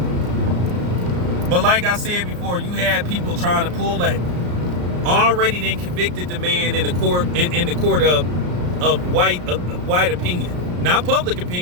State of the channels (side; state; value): left; late; 34 ms